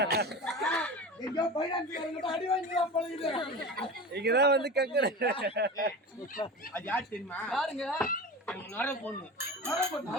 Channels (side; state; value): both; normal; correlation 0.30